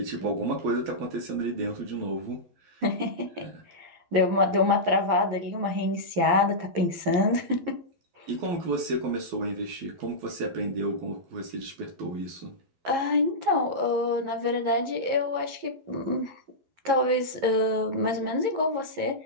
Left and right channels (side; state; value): left; late; 11 ms